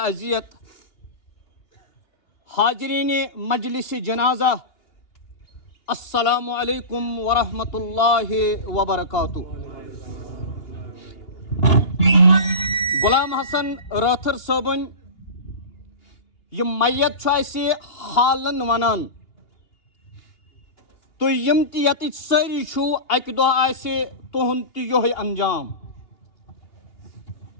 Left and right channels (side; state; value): right; late; 2.8 ms